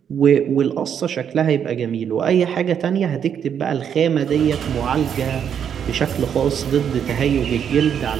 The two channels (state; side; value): quieter; left; 8.3 dB